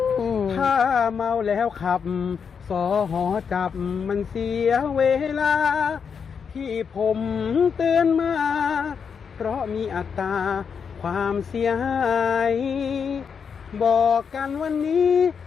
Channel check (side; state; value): right; quieter; 6.5 dB